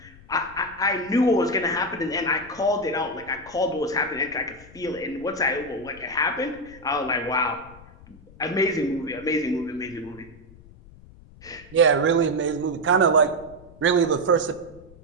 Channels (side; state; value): left; noise; rumble, 21 dB below the sound